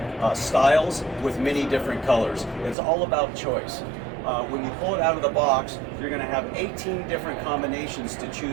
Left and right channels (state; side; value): drops out; left; at 2.8 s